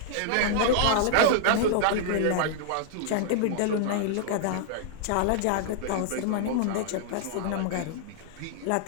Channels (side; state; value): both; different; correlation -0.01